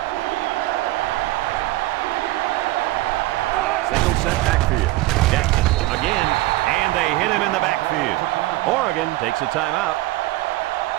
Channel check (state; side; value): quieter; left; 18.1 dB